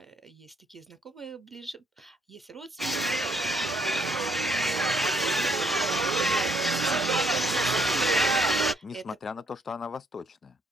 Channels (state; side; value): normal; both; correlation 0.68